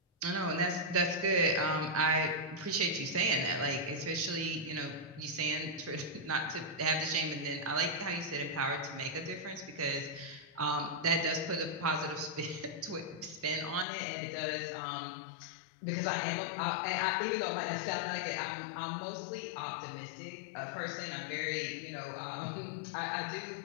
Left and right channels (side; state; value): right; drops out; at 13.9 s